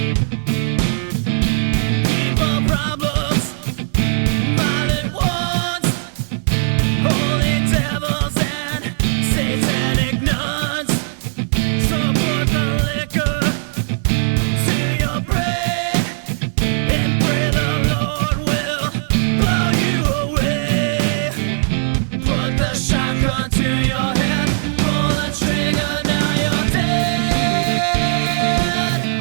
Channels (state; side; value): silent; left; 59 dB below the other